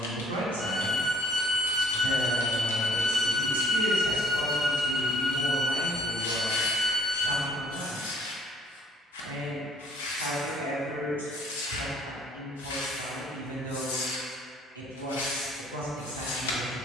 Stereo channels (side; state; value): both; normal; correlation 0.60